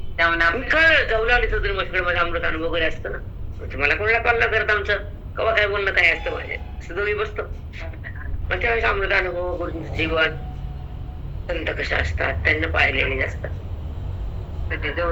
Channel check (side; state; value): both; identical; correlation 1.00